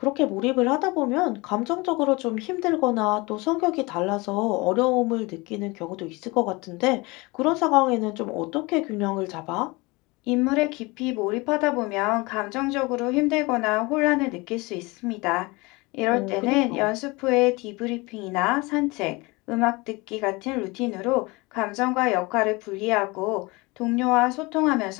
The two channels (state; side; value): quieter; right; 24.6 dB